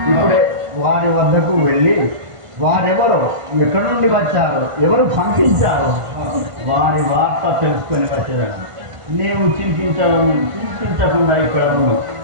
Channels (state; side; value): late; left; 1.5 ms